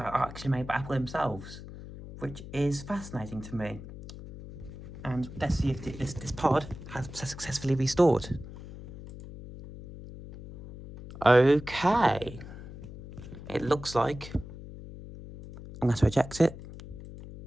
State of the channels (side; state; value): left; noise; hum, 13 dB below the sound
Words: actually made by Apple themselves, which is fascinating to me. And let's see if this pod has successfully restored. Okay. It looks like I'm going to eject it.